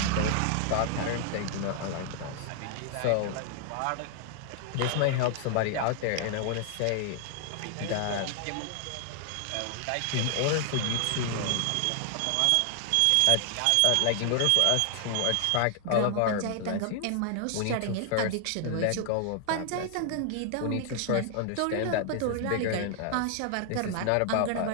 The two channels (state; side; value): different; both; correlation 0.00